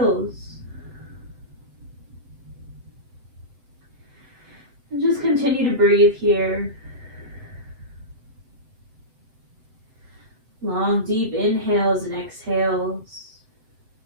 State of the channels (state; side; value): late; left; 7.8 ms